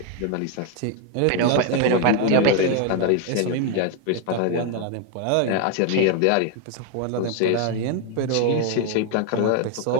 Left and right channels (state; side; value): different; both; correlation 0.01